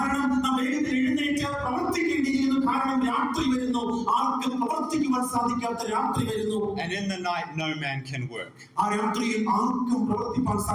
നാം എഴുന്നേറ്റ് പ്രവർത്തിക്കേണ്ടിയിരിക്കുന്നു. കാരണം രാത്രി വരുന്നു. ആർക്കും പ്രവർത്തിക്കുവാൻ സാധിക്കാത്ത രാത്രി വരുന്നു. And in the night no man can work. ആ രാത്രിയിൽ ആർക്കും പ്രവർത്തിക്കാൻ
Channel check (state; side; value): identical; both; correlation 1.00